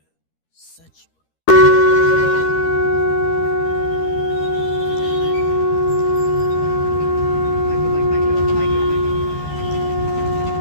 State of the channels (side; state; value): right; late; 13 ms